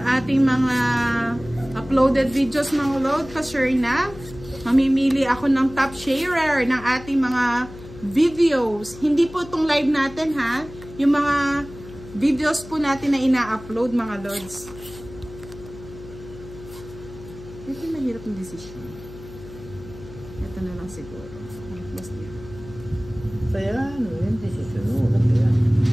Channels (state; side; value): noise; left; hum, 16 dB below the sound